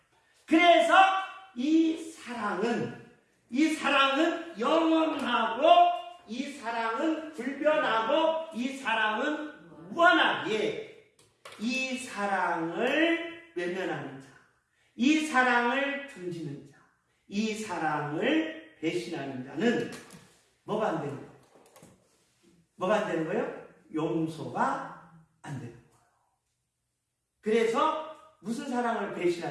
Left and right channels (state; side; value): identical; both; correlation 1.00